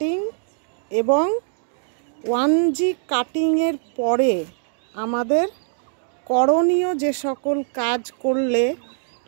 এবং 1G কাটিংয়ের পরে আমাদের করণীয় যে সকল কাজ করলে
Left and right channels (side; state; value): left; silent; digital silence